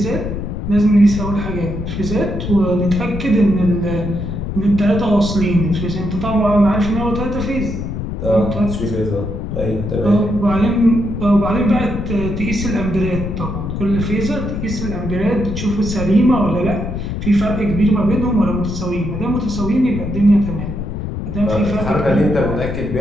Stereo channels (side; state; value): left; noise; rumble, 5 dB below the sound